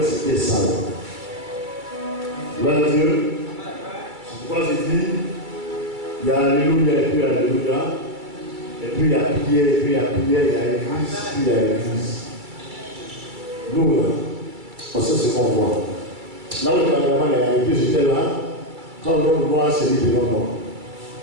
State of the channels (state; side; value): late; left; 2.3 ms